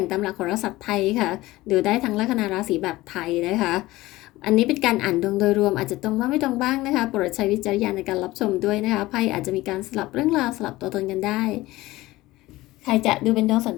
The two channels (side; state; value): right; quieter; 18.4 dB